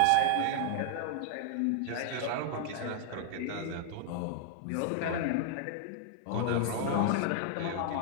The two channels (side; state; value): both; different; correlation 0.00